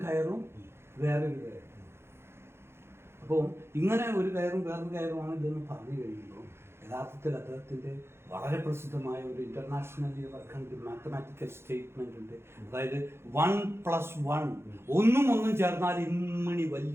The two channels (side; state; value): left; late; 0.12 ms